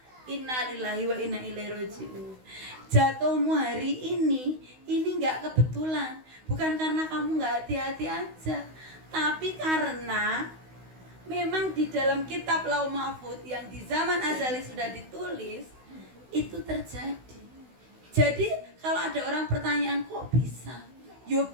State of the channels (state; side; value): late; left; 16 ms